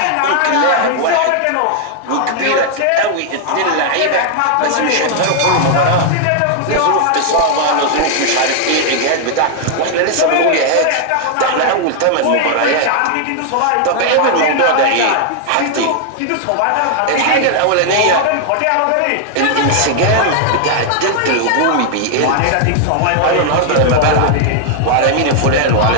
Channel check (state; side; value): different; both; correlation 0.00